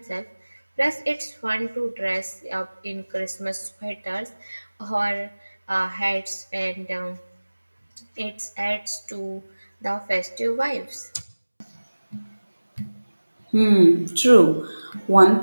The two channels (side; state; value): both; inverted; correlation -1.00